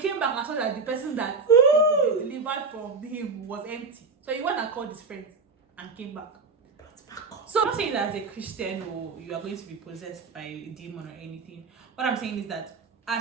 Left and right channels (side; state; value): left; quieter; 4.4 dB